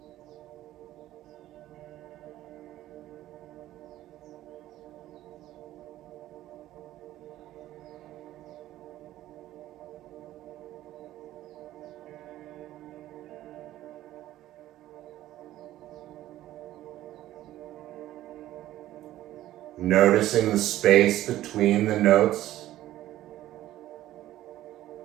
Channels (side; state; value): left; quieter; 14.3 dB